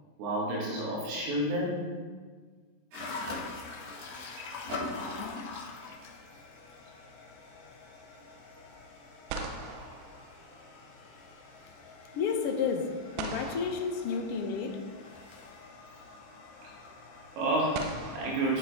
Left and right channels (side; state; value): left; late; 25 ms